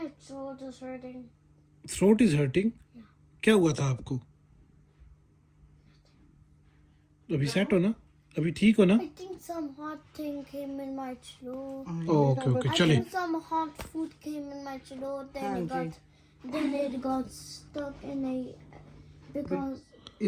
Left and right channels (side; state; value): both; identical; correlation 1.00